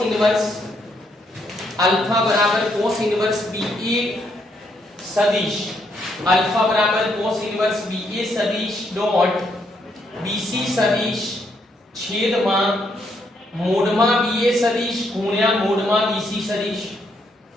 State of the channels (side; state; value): both; normal; correlation 0.74